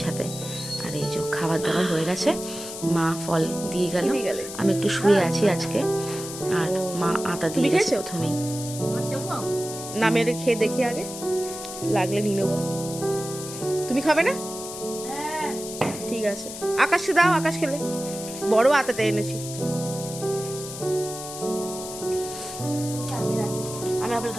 সাথে। আর এই যে খাবার দাবার হয়ে গেছে, মা ফল দিয়ে গেল, আমি একটু শুয়ে আছি আজকে। আর মা আটা দিয়ে গেছে প্রথমেই। না মেরে খেয়ে দেখি, আগে লাগলে নিয়ে নেবো। তুমি খাবে না? ঠিক আছে, আকাশকে দাও, আকাশ খেলে। বড় আতাটা এনেছি। আমি আপেল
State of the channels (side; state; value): left; noise; hiss, 10 dB below the sound